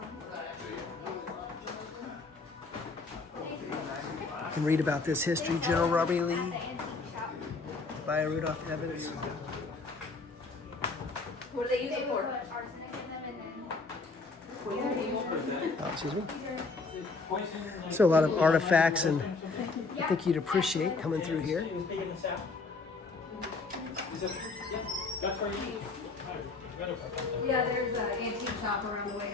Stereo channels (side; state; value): right; quieter; 4.0 dB